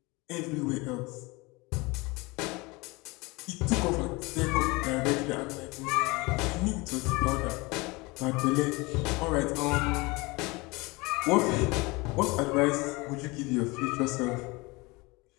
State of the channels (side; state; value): right; quieter; 24.6 dB